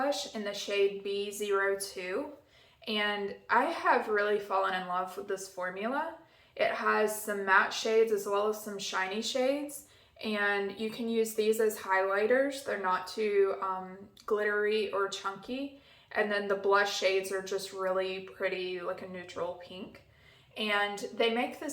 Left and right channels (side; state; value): both; identical; correlation 1.00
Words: in the shade B02. And I have really fallen in love with this formula. It has some matte shades as well as some shiny shades. And you can use these as highlighters. They're not too glittery or chunky. And then the blush shades are just really pretty, like a neutral pink. And they make